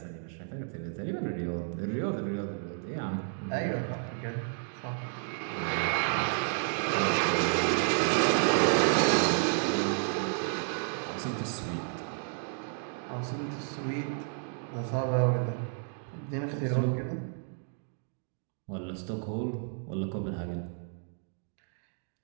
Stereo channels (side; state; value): left; silent; 57 dB below the other